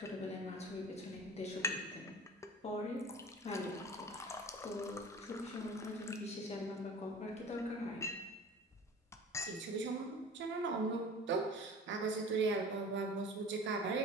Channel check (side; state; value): both; normal; correlation 0.40